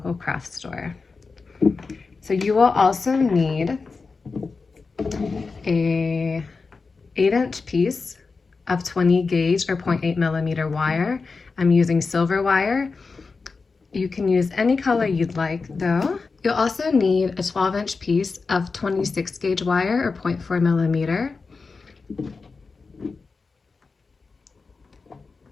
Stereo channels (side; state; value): right; quieter; 4.4 dB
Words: craft store. So you will also need a 8-inch piece of 20 gauge or 0.8 millimeter wire. I'm using silver wire. You can use any color you'd like though. You'll also need a 12-inch piece of 26 gauge wire or 0.4 millimeter.